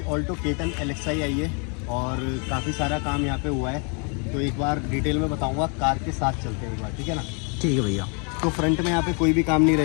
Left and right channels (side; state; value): right; quieter; 36.5 dB